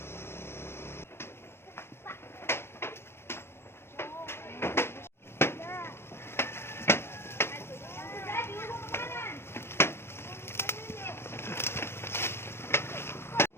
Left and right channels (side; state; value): right; late; 0.12 ms